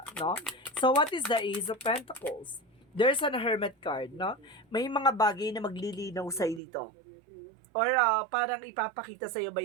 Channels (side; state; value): left; drops out; at 6.6 s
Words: no? So, what is the Ace of Pentacles? There's an Hermit card, no? May mga bagay na maglilinaw sa'yo dito. Or parang ipapakita sa'yo